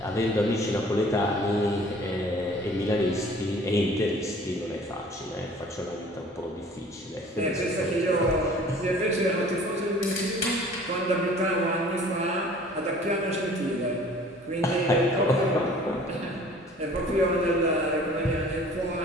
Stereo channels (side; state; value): both; normal; correlation 0.49